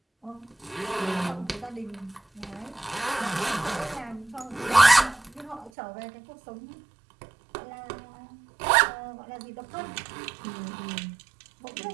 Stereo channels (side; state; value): left; drops out; at 5.7 s